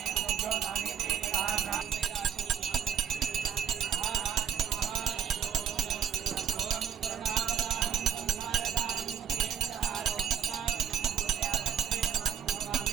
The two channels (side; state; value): left; quieter; 8.5 dB